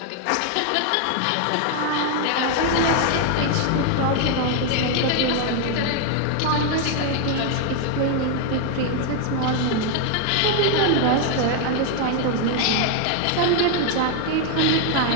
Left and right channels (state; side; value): different; both; correlation 0.01